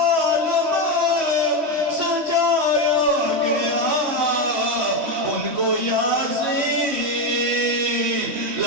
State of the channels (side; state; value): left; late; 3.1 ms